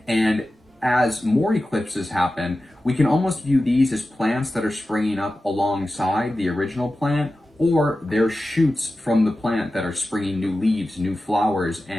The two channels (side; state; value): both; normal; correlation 0.94